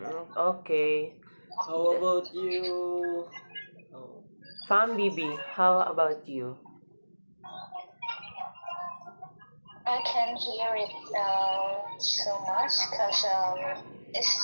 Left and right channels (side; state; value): both; inverted; correlation -1.00